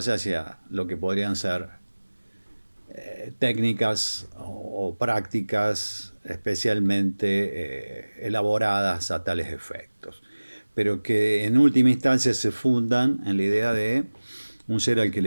hacia lo que podrían ser técnicas o prácticas especialmente elaboradas a tales efectos, pero que en última instancia se fundan en la idea de un ser al que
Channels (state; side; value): inverted; both; correlation -1.00